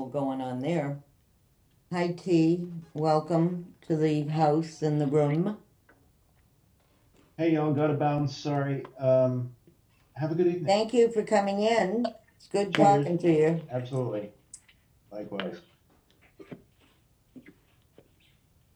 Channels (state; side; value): identical; both; correlation 1.00